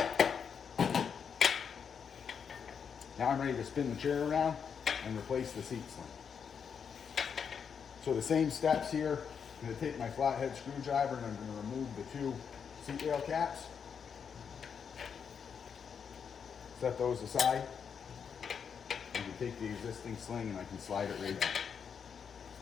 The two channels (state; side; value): quieter; right; 6.9 dB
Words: Now I'm ready to spin the chair around and replace the seat sling. So the same steps here. I'm going to take my flathead screwdriver and I'm going to remove the two seat rail caps. Set those aside. I can take the existing sling and I can slide it right